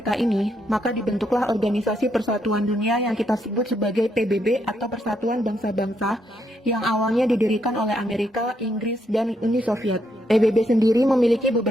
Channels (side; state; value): both; normal; correlation 0.77